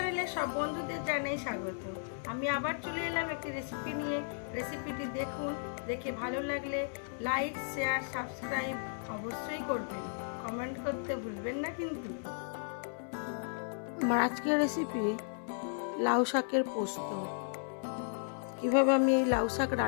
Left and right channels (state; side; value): silent; right; 55 dB below the other